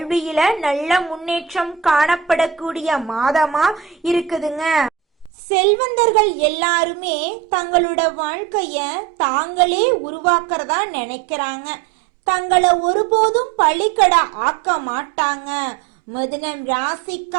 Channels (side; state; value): left; drops out; at 5.3 s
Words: நல்ல முன்னேற்றம் காணப்படக்கூடிய மாதமா இருக்குதுங்க. செல்வந்தர்கள் எல்லாருமே தங்களோட வாழ்க்கைய தாங்களே உருவாக்குறதா நினைக்கிறாங்க. தங்களை ஒருபோதும் பழிக்கடை ஆக்க மாட்டாங்க. மிதுனம்